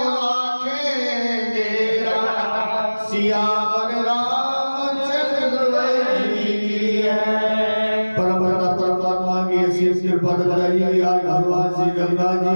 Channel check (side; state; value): both; inverted; correlation -1.00